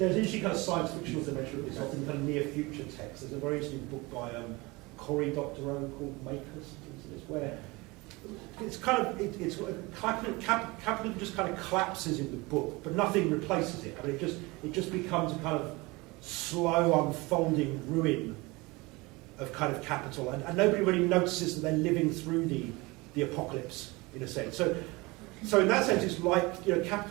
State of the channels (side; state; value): left; quieter; 23.8 dB